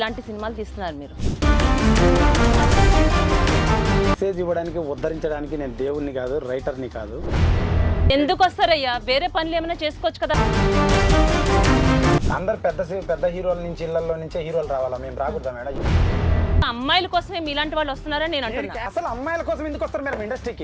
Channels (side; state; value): both; identical; correlation 1.00